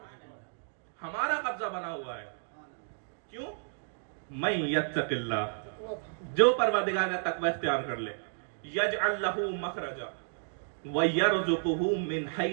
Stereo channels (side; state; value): left; silent; digital silence